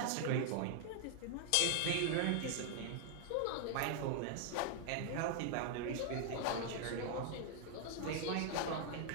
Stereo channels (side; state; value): both; different; correlation 0.00